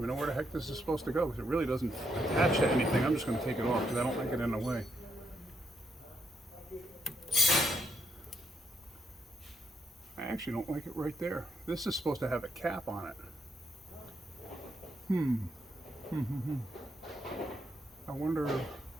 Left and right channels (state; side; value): normal; both; correlation 0.77